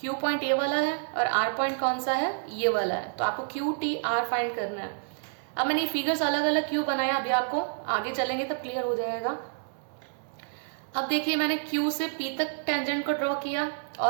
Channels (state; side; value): silent; left; 59 dB below the other